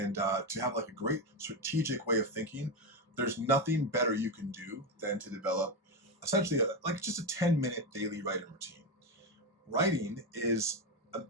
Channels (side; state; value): both; normal; correlation 0.12